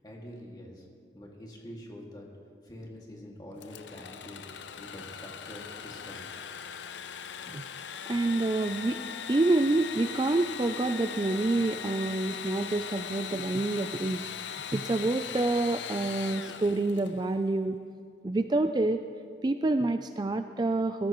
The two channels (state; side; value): normal; both; correlation 0.75